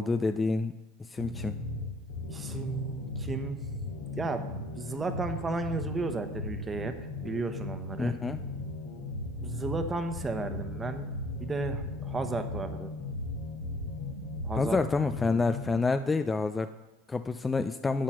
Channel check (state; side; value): normal; both; correlation 0.65